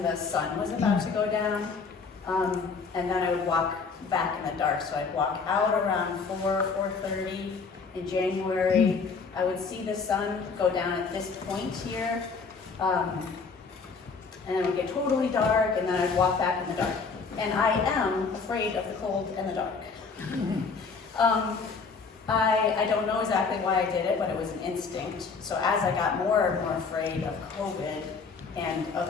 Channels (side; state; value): right; quieter; 4.9 dB